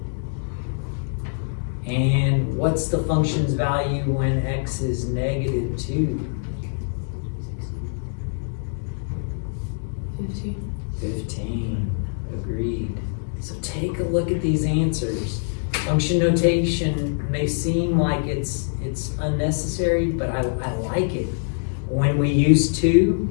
And what's the function's value when x is negative 2? 15. Agreed. So take a look at these answers. Function notation may seem like it's unnecessary, but I like it. When we use 2,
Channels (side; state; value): right; silent; digital silence